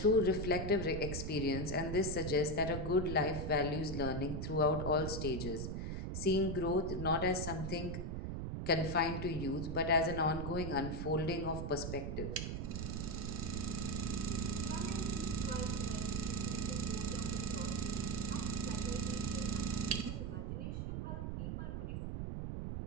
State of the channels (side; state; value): right; noise; rumble, 3 dB below the sound